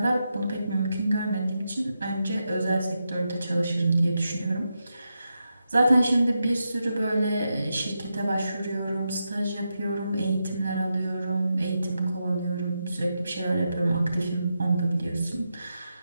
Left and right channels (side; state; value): both; inverted; correlation -0.87